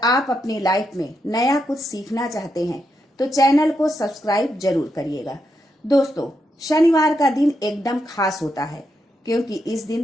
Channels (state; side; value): normal; both; correlation 0.83